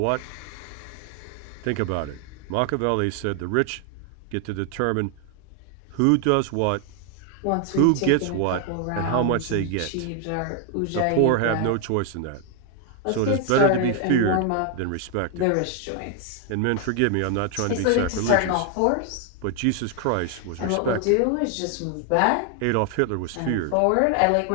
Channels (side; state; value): both; different; correlation 0.00